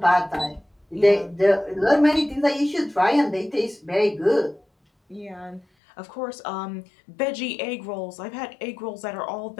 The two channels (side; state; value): right; drops out; at 5.7 s